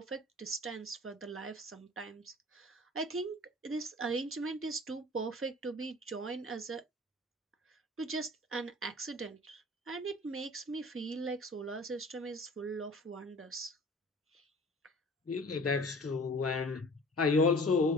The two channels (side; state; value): both; normal; correlation 0.45